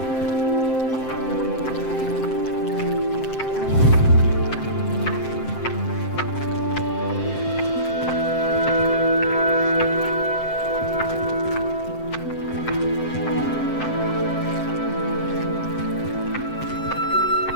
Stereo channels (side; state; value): right; late; 7.7 ms